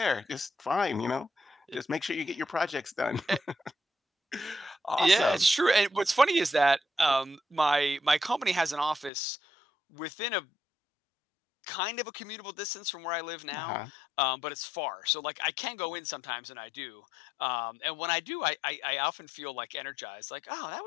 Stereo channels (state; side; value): drops out; right; at 9.1 s